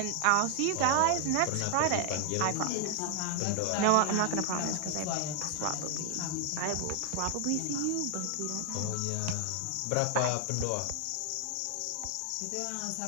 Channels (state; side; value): different; both; correlation 0.00